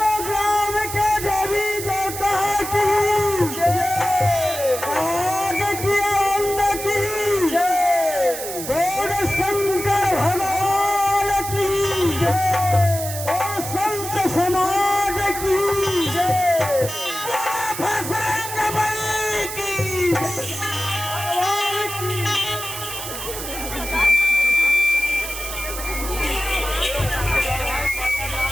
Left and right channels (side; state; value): right; noise; hiss, 7 dB below the sound